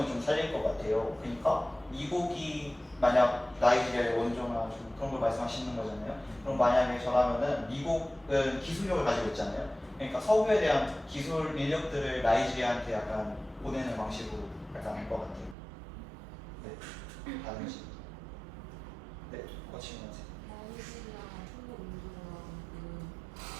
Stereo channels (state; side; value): drops out; left; at 15.6 s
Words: 좀 살릴 것 같아요. 그러니까 미국이 만약 나이지리아의 원조나 좀 그런 걸 말씀하시는 거잖아요. 그럼 만약에 저라면은 미국은 기술력을 가지고 있잖아요. 그러니까 석유에 대한 기술 인력들을 나이지리아한테 약간 보내는 방식으로 약간 할 것 같아요. 네, 다른 식. 네, 거치면 하세요. 나이지리아 한국 민주공화국은